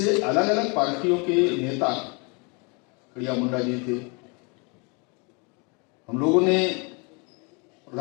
अलग अलग पार्टियों के नेता, खड़िया मुंडा जी थे। हम लोगों ने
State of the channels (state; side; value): quieter; right; 31.7 dB